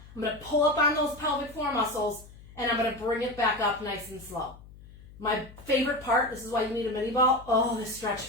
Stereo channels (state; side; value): noise; left; hum, 20 dB below the sound